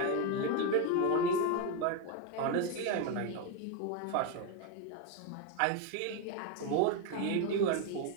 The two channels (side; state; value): both; different; correlation 0.02